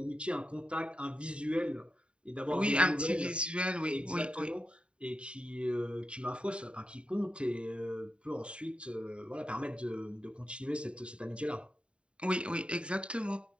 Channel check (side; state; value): left; late; 0.056 ms